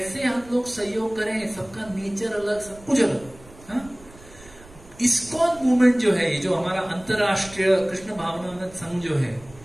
हम लोग सहयोग करें? सबका नेचर अलग, सब कुछ अलग। हाँ? इस्कॉन मूवमेंट जो है, ये जो हमारा अंतरराष्ट्रीय कृष्ण भावनामृत संघ जो है,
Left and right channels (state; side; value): noise; right; rumble, 21 dB below the sound